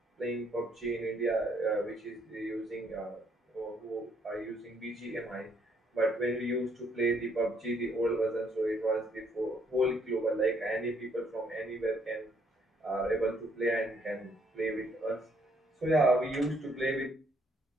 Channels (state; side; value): normal; both; correlation 0.68